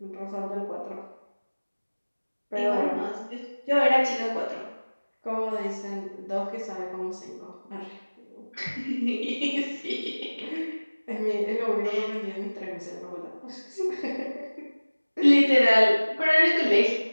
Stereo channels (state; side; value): inverted; both; correlation -1.00